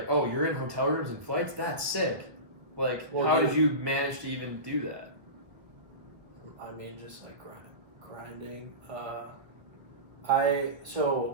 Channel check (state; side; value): late; left; 1.4 ms